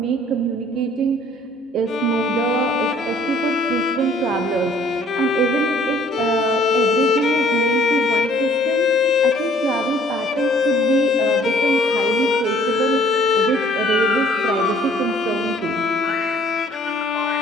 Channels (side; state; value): both; normal; correlation 0.58